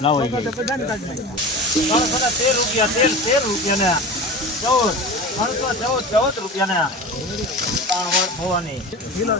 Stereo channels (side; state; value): both; normal; correlation 0.32